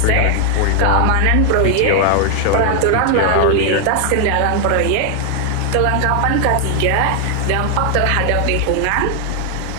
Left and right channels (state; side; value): different; both; correlation 0.00